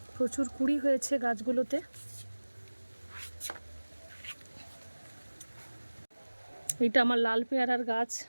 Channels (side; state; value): both; inverted; correlation -1.00